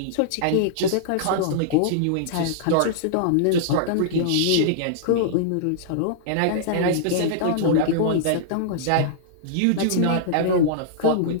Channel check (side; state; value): both; different; correlation -0.02